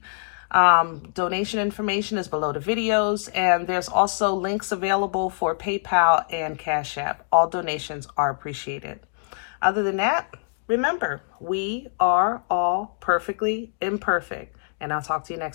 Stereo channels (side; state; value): right; silent; digital silence